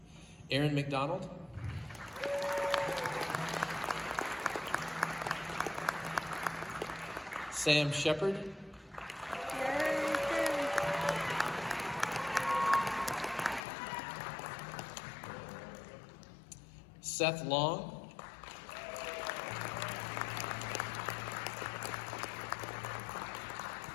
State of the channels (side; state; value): right; drops out; at 13.6 s